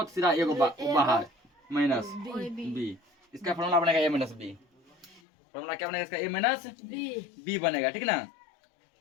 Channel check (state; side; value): drops out; right; at 5.2 s